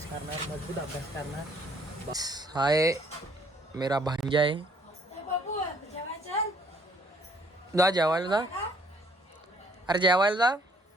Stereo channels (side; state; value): both; normal; correlation 0.63